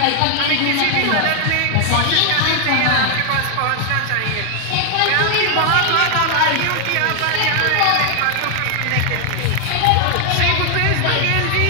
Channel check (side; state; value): both; different; correlation 0.00